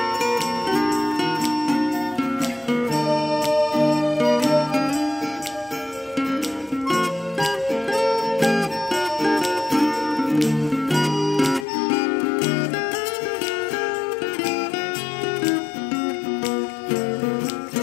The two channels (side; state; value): right; drops out; at 11.7 s